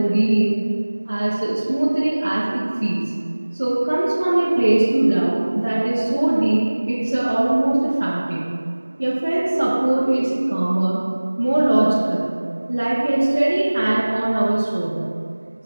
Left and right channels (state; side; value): inverted; both; correlation -1.00